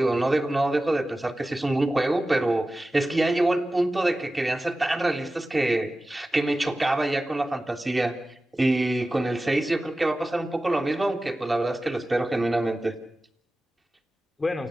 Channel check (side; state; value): both; normal; correlation 0.95